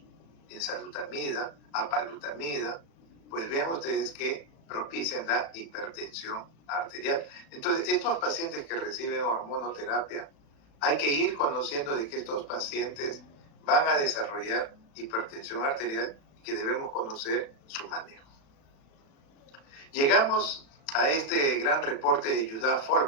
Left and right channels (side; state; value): right; late; 36 ms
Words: enzalutamida, apalutamida, pues vean ustedes que propician la hipertensión arterial. Entonces, estos pacientes que reciben hormonoterapia, hay que ir conociendo de que estos pacientes van a desarrollar hipertensión arterial y que debemos conocer su manejo. Llegamos a este gran reporte de Judá